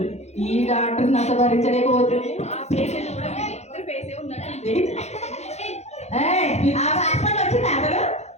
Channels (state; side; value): late; right; 0.32 ms